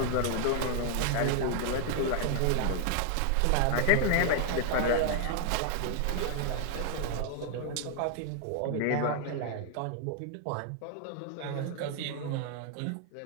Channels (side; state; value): both; different; correlation 0.00